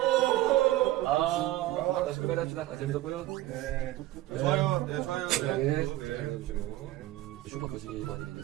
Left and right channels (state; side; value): quieter; left; 15.9 dB